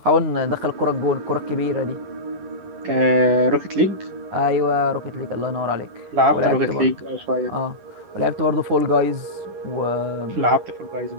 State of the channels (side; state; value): left; late; 10 ms